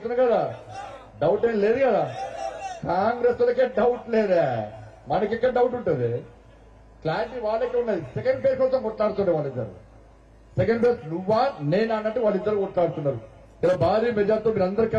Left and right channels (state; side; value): identical; both; correlation 1.00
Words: కదా, డౌట్ ఏం లేదు కదా. కాంగ్రెస్ వాళ్ళకే డౌట్ లేదా, మనకెక్కడ డౌట్ ఉంటుంది? క్లారిటీ వాళ్ళకే ఉన్నది. సెకండ్ ఫేజ్ కోసం కొట్లాడుతుండే వాళ్ళిద్దరు. సెకండ్ ఫేజ్ నువ్వా నేనా అన్నట్టు వాళ్ళిద్దరు కొట్లాడుతున్నారు. ఇలా భారీ మెజార్టీతో మీరు అందరు